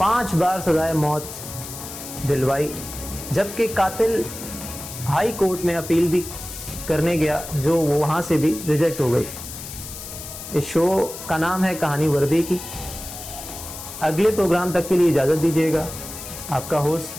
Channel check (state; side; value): noise; left; hiss, 11 dB below the sound